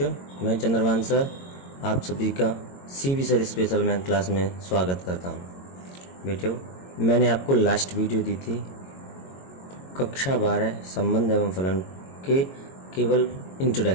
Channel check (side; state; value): right; late; 22 ms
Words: मैं चंद्रभान सर आप सभी का CB sir special math class में स्वागत करता हूं। बेटियों, मैंने आपको लास्ट वीडियो दी थी कक्षा 12 संबंध एवं फलन के केवल